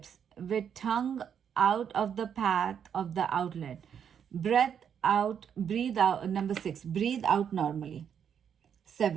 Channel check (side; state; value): left; quieter; 8.1 dB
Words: with tongue out of the path of the outlet. Breathe out. Number 6. Breathe out normally.